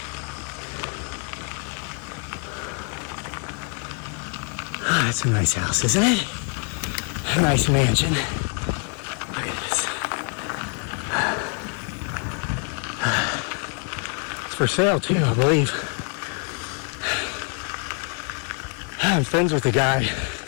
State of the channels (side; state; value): right; quieter; 37.5 dB